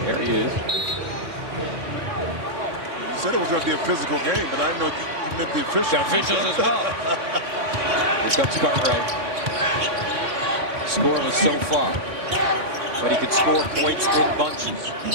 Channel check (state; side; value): late; left; 3.6 ms